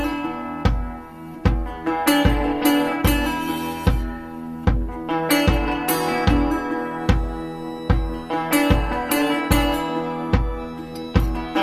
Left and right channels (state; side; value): identical; both; correlation 1.00